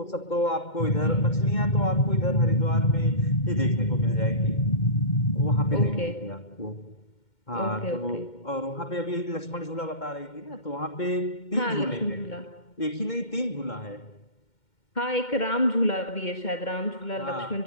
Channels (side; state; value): right; late; 2.1 ms